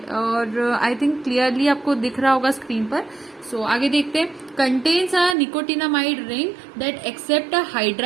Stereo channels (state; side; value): drops out; left; at 5.4 s